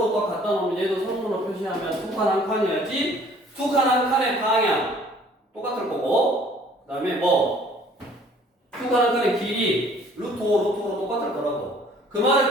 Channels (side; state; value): both; normal; correlation 0.56